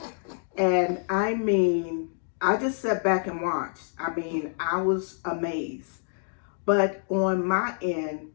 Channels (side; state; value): right; silent; digital silence